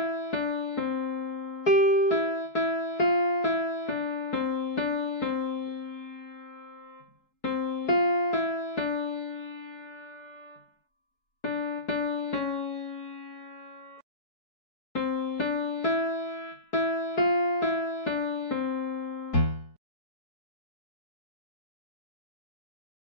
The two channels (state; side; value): late; right; 4.6 ms